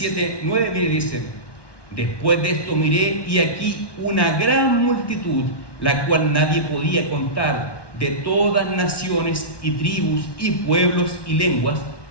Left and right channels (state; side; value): late; right; 1.2 ms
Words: 7:9, mire, dice, después de esto miré y aquí una gran multitud, la cual nadie podía contar, de todas naciones y tribus y pueblos y lenguas,